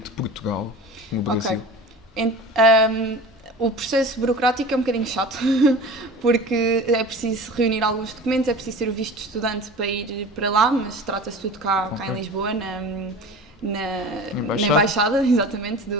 Portugal, no Brasil? O processo burocrático é um bocadinho chato, porque é preciso reunir alguns documentos, é preciso ter o visto de estudante para ir para lá, mas trata-se tudo cá em Lisboa, na Embaixada, exatamente,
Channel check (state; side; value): normal; both; correlation 0.37